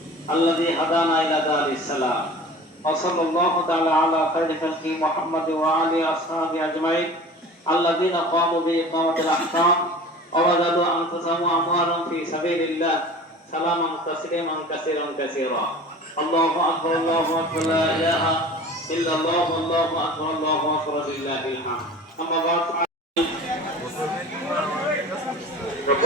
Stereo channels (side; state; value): both; normal; correlation 0.40